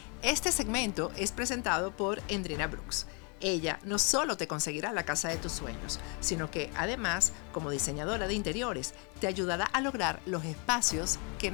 Este segmento es presentado por Endrina Brooks. Ella no solo te conseguirá la casa de tus sueños, sino que además, como diseñadora de interiores, te ayudará a lograr los espacios que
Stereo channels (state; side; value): quieter; right; 34.3 dB